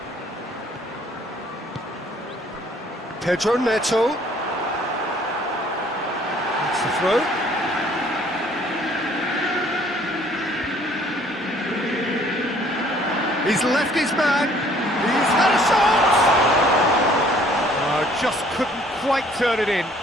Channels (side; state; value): both; normal; correlation 0.58